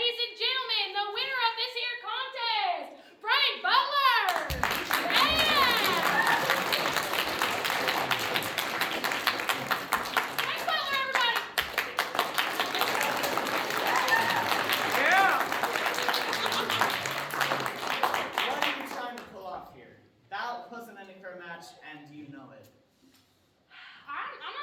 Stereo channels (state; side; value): identical; both; correlation 1.00